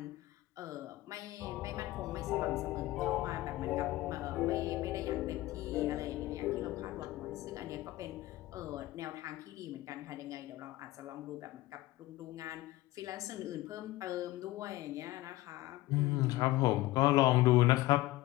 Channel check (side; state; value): right; quieter; 17.5 dB